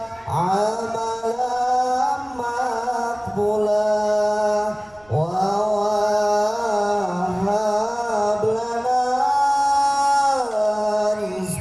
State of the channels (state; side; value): noise; right; rumble, 29 dB below the sound